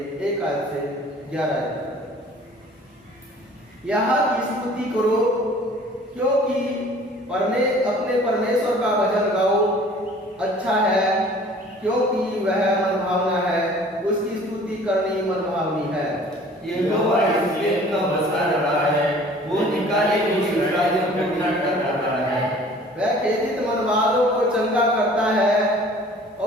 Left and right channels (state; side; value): normal; both; correlation 0.50